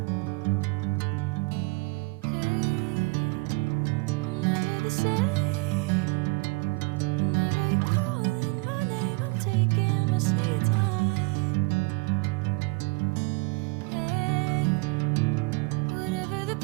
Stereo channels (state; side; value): quieter; left; 28.3 dB